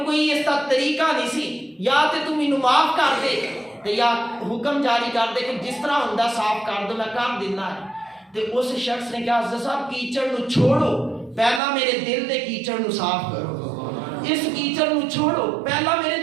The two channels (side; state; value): left; drops out; at 11.6 s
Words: کوئی اس کا طریقہ نہیں سی, یا تے تو مینوں معاف کر دے تے یا حکم جاری کر دے کہ جس طرح ہوندا صاف کر دو, میں کر دینا ہے. تے اس شخص نے کہا حضرت صاحب کیچڑ نو چھوڑو, پہلا میرے دل دے کیچڑ نو صاف کرو, اس کیچڑ نو چھوڑو, پہلا میرے